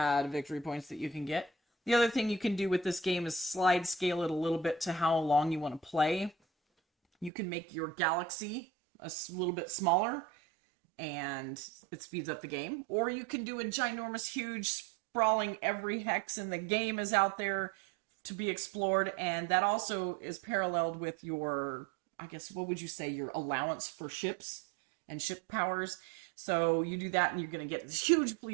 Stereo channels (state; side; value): drops out; left; at 7.3 s